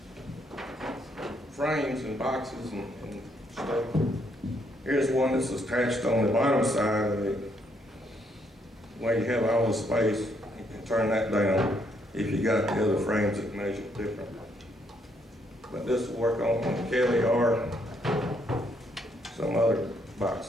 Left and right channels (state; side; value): normal; both; correlation 0.72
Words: frames and boxes and stuff, here's one that's attached on the bottom side of it, where you have all the space. You can turn that down if you got the other frames that measure different. But this will work on the Kelly or some other